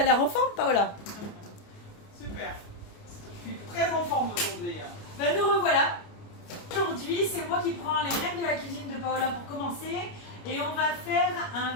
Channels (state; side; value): late; right; 29 ms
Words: l'air en forme, Paola? Super. Je suis très en forme aujourd'hui. Ben nous revoilà. Aujourd'hui, c'est moi qui prends les rênes de la cuisine de Paola pour commencer. Et on va faire